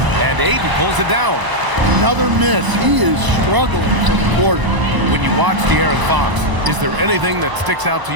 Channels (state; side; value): late; left; 1.0 ms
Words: And Ayton pulls it down. Another miss. He is struggling for the quarter. When you watch De'Aaron Fox, is there anything that sticks out to